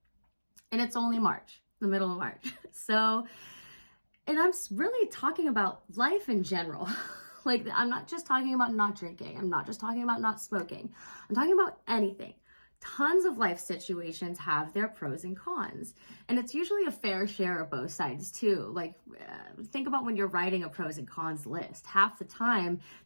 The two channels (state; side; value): inverted; both; correlation -1.00